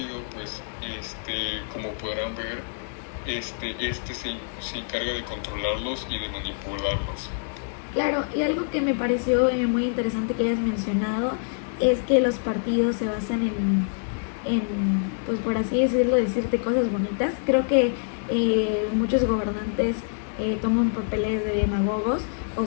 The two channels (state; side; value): silent; right; digital silence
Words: pues, como podrán ver, se encarga de controlarlos y de manipularlos. Claro, y algo que me pareció muy interesante que hayas mencionado es que los partidos se basan en pues por así decirlo, decirte cosas bonitas. Creo que muchos gobernantes toman papeles de demagogos, o